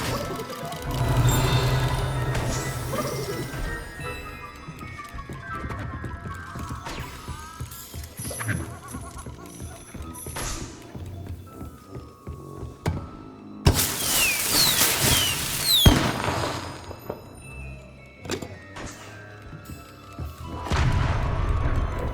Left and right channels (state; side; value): identical; both; correlation 1.00